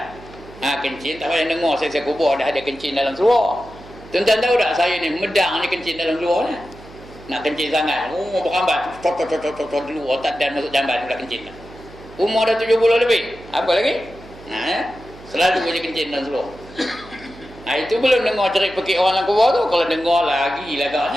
Kencing tak payah dengar. Saya kubur dah ada kencing dalam seluruh. Tuan-tuan tahu tak, saya ni medang ni kencing dalam seluruh ni. Nak kencing sangat, berkambat tot dulu, otak dan masuk jamban pula kencing dah. Umur dah 70 lebih. Apa lagi? Selalu je kencing dalam seluruh. Itu belum dengar cerit pekik orang dalam kubur tu. Kalau dengar lagi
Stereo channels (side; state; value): right; noise; hum, 19 dB below the sound